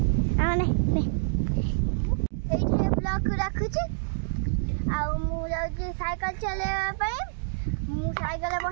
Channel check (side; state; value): left; silent; digital silence